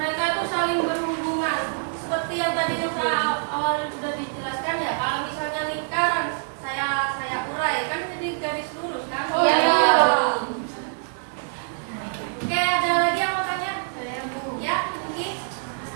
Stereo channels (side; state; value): left; silent; digital silence